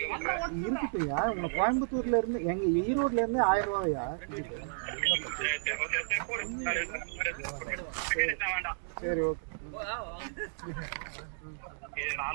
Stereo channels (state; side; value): silent; left; digital silence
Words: இருக்குயா உங்க கோயம்புத்தூர்ல இருந்து எங்க ஈரோட்ல இருந்து 1000 ரூபாயா? சரி ஓகே.